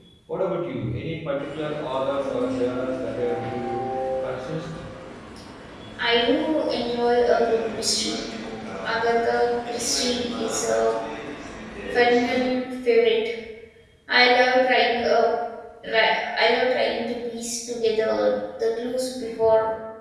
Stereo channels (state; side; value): identical; both; correlation 1.00